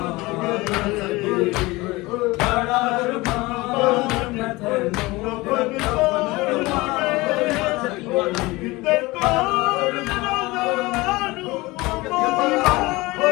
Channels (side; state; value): right; quieter; 21.6 dB